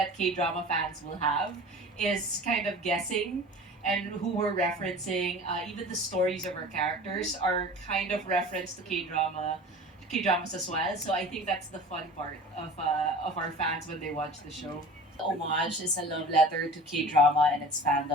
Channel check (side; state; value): both; normal; correlation 0.40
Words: K-drama fans will have, is kind of guessing and who we're referencing. Even the stories of our characters are kind of referenced to K-dramas as well. So I think that's the fun part of our fans when they watch the show. Homage is a love letter to K-drama and its